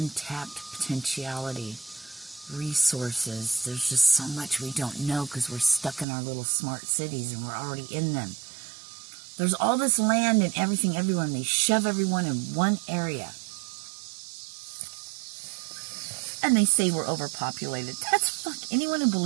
potentiality, resources. There's just so much we don't know because we're stuck in our little smart cities and we're already in them. There's all this land and everything everywhere, and they shove everyone in one area. And they say we're overpopulated. That's fuck. Anyone who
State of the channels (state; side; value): drops out; left; at 6.1 s